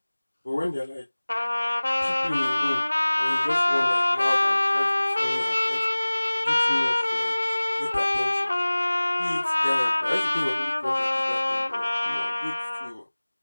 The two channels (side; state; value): both; inverted; correlation -1.00